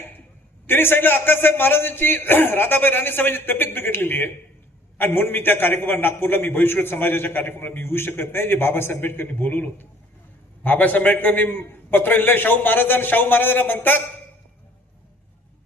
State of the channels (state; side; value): normal; both; correlation 0.56